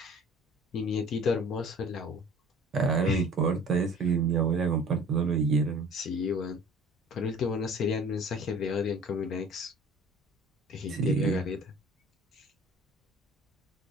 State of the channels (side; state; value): both; normal; correlation 0.46